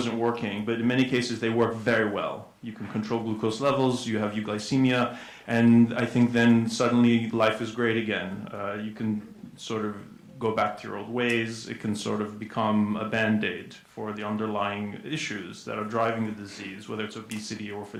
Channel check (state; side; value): identical; both; correlation 1.00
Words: working, but in many cases, they work very well. You can control glucose levels, you have euglycemia, and I think then suddenly life is great again. You can sort of go back to your old ways. It can sort of become a band-aid for the underlying issues that are driving the disease, whether it's obesity or if